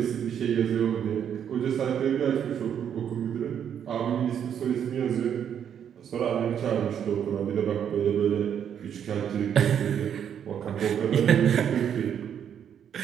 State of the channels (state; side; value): quieter; left; 8.7 dB